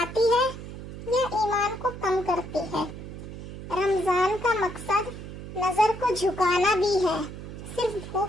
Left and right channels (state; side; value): noise; right; hum, 11 dB below the sound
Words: ہے یا ایمان کو کم کرتی ہے۔ رمضان کا مقصد نظر کو جھکانا بھی ہے، صرف